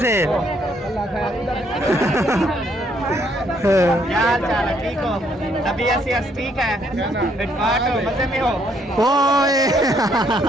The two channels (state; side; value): normal; both; correlation 0.69